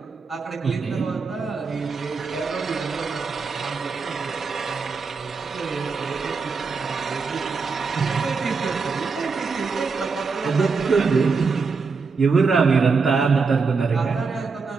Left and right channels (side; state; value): left; quieter; 4.8 dB